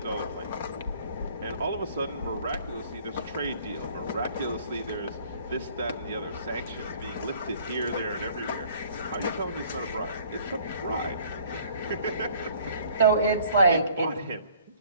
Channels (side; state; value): both; inverted; correlation -0.55